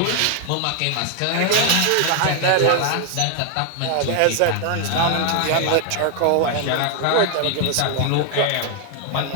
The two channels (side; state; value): both; different; correlation 0.00